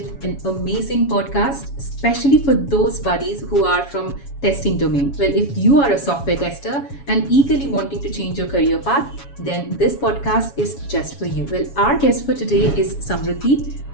an amazing podcast, especially for those buddies who are from testing domain. Well, if you are a software tester and eagerly wanting to change your career path, then this podcast is just for you. Well, our guest for today is 𝗦cie𝗰𝗶𝗹,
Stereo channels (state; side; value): late; right; 7.2 ms